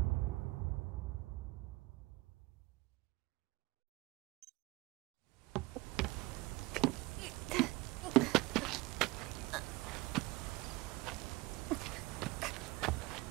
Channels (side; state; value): left; quieter; 21.7 dB